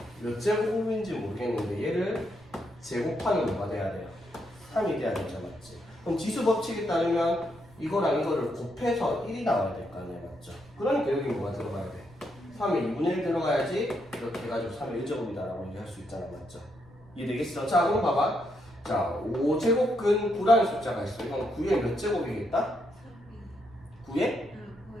몇 제곱인지 모르겠는데 얘를 제곱하면 뭐가 돼야 돼요? 3이 돼야 되죠, 맞지? 그럼 지수 법칙에 따르면 이거랑 이거를 곱해서 1이 나와야 될 거 아니에요, 맞죠? 그러니까 여기 뭐가 들어가야 돼? 3의 2분의 1 들어가야지 이렇게 해가지고 3의 1제곱이다라고 얘기할 수 있잖아, 맞죠? 이해되겠어? 자, 그럼 봐봐. 자, 5제곱근 9라는 숫자가 있어. 이건 9의 몇 제곱이겠다? 9의?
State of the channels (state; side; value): noise; right; rumble, 24 dB below the sound